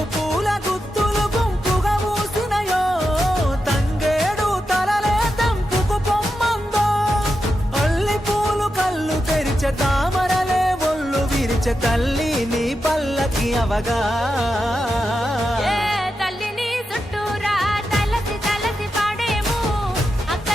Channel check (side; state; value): both; normal; correlation 0.88